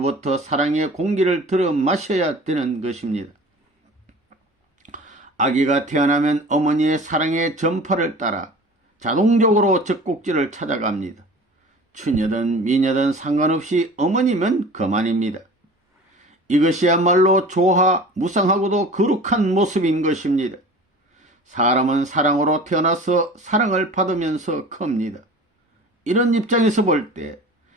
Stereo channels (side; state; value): both; normal; correlation 0.40